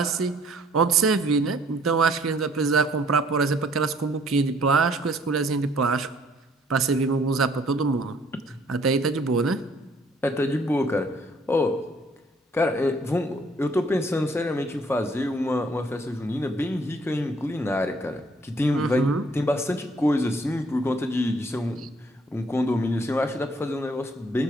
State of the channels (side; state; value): both; normal; correlation 0.61